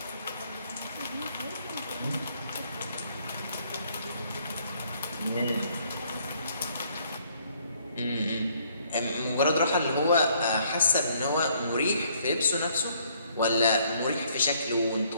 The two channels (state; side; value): inverted; both; correlation -0.65